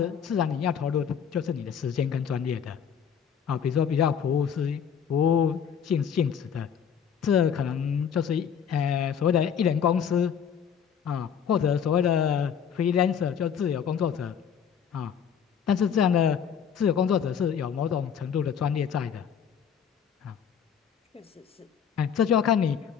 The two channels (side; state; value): right; quieter; 7.8 dB